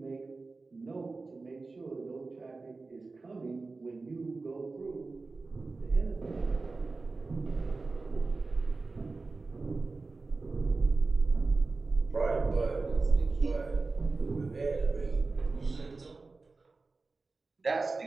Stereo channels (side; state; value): left; quieter; 3.8 dB